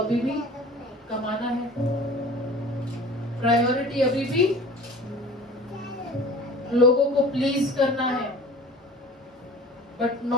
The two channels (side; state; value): both; normal; correlation 0.42